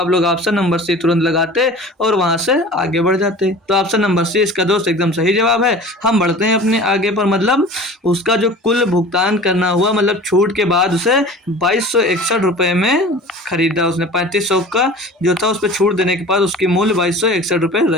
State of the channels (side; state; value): both; normal; correlation 0.40